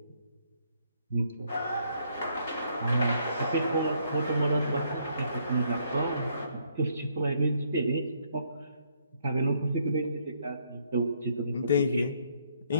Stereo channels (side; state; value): both; inverted; correlation -0.70